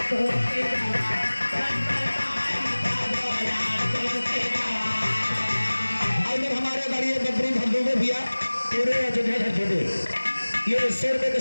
पूरे अयोध्या धरती में ये 100 रुपये का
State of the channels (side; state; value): both; inverted; correlation -1.00